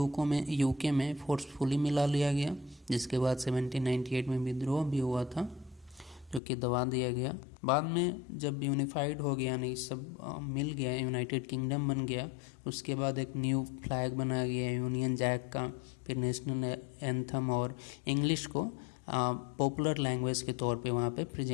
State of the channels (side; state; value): right; drops out; at 6.4 s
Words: में फोर्सफुली मिला लिया गया, जिसके बाद 1798 में विद्रोह भी हुआ था जो कि दबा दिया गया। बाद में जब यूनिफाइड हो गया, नहीं सब मिल गया, यूनाइटेड किंगडम बन गया, उसके बाद एक न्यू फ्लैग बनाया गया यूनियन जैक का, फिर नेशनल एंथम और इंग्लिश को पॉपुलर लैंग्वेज के तौर पे वहाँ पे